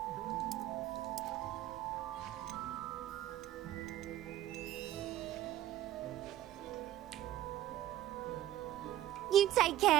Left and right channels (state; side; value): quieter; left; 13.3 dB